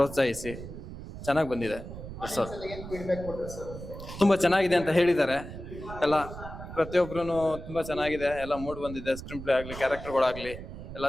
ಚೆನ್ನಾಗಿ ಬಂದಿದೆ ಸರ್, ಏನು ಫೀಡ್ಬ್ಯಾಕ್ ಕೊಟ್ಟರು ಸರ್? ತುಂಬ ಚೆನ್ನಾಗಿದೆ ಅಂತ ಹೇಳಿದ್ದಾರೆ ಎಲ್ಲ. ಪ್ರತಿಯೊಬ್ಬರೂ ತುಂಬ ಚೆನ್ನಾಗಿದೆ, ಎಲ್ಲ ಮೂಡ್ ಬಂದಿದೆ. ಸ್ಕ್ರೀನ್ ಪ್ಲೇ ಆಗಲಿ, ಕ್ಯಾರೆಕ್ಟರ್ಗಳಾಗಲಿ ಎಲ್ಲ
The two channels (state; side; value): noise; right; rumble, 11 dB below the sound